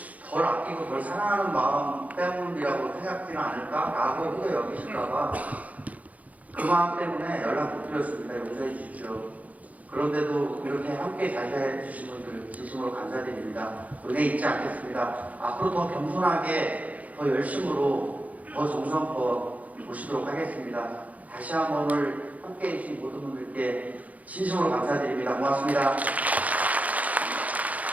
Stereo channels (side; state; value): left; late; 0.072 ms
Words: 덜 아끼고 덜 사랑하는 마음 때문이라고 생각지는 않을까라고 혹여 여기실까봐 그 마음 때문에 연락 못 드렸습니다. 용서해 주십시오. 그런데도 이렇게 함께 자리해 주신 분들 진심으로 감사드립니다. 은혜 잊지 않겠습니다. 앞으로 더 겸손하게 더 열심으로 더 정성껏 모시도록 하겠습니다. 다시 한번 오늘 함께 해주신 모든 분들께 진심으로 감사드립니다. 고맙습니다.